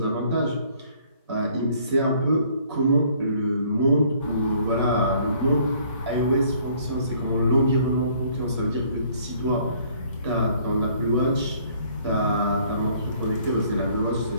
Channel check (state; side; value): inverted; both; correlation -0.60